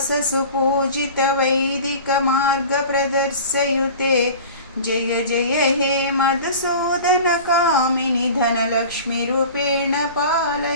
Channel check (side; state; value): both; inverted; correlation -0.39